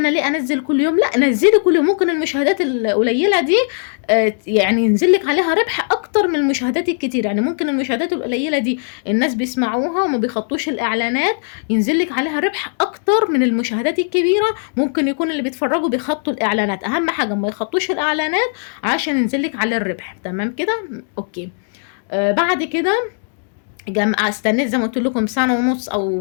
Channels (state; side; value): silent; right; 63 dB below the other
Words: ليه انزل كل يوم؟ لا، نزلي كل يوم. ممكن المشاهدات القليله دي يعني ينزل لك عليها ربح اكتر من المشاهدات الكتير. يعني ممكن المشاهدات القليله دي الناس بيسمعوها وما بيخطوش الاعلانات، ينزل لك عليها ربح اكتر من المشاهدات الكبيره. ممكن يكون اللي بيتفرجوا بيخطوا الاعلانات، اهم حاجه ما يخطوش الاعلانات عشان ينزل لك على الربح. تمام كده؟ اوكي. بعد كده استنيت زي ما قلت لكم سنه ونص